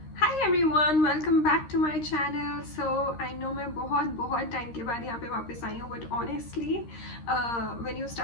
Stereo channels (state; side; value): late; right; 13 ms